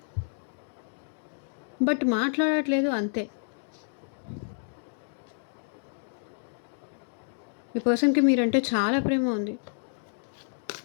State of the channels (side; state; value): right; silent; digital silence